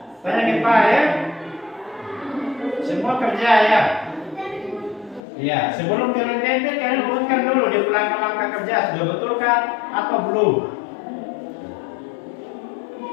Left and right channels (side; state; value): right; drops out; at 5.2 s